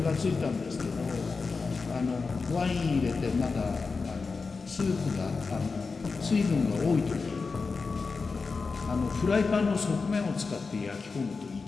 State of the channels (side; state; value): right; quieter; 4.5 dB